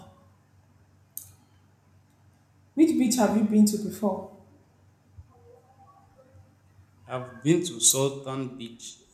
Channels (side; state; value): both; identical; correlation 1.00